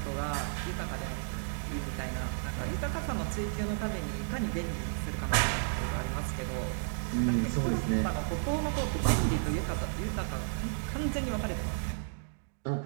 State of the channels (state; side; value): silent; left; digital silence